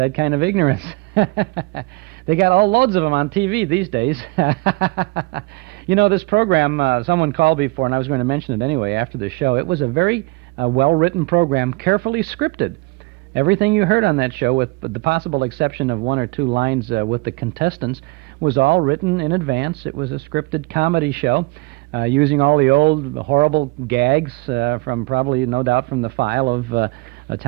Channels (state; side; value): quieter; left; 24.8 dB